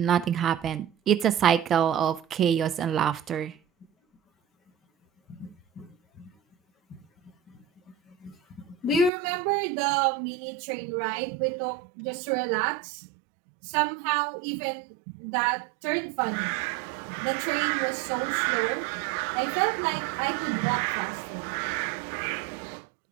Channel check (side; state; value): left; drops out; at 9.1 s